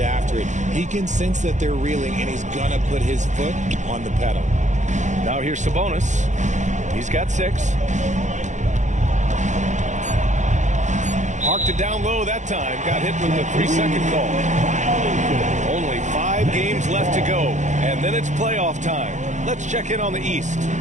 after it. He can sense that they're reeling, and he's going to put his foot on the pedal. Now here's Sabonis. He's got 6. Parked it down low that time. Got hit with the 3-second call. Only 5 games left to go, and then it's playoff time. Let's check in on the East.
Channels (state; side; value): late; left; 0.35 ms